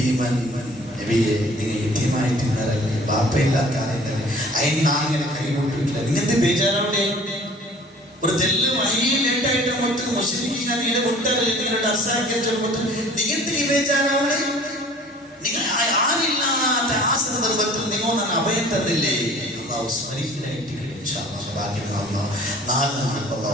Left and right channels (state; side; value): normal; both; correlation 0.49